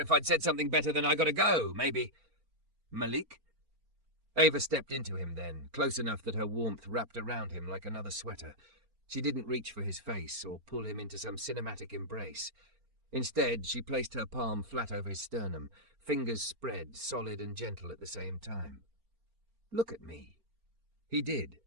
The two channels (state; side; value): late; left; 4.4 ms